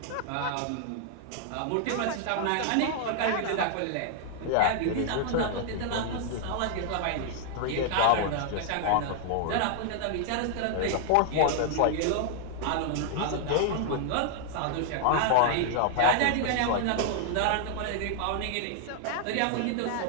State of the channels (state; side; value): different; both; correlation 0.00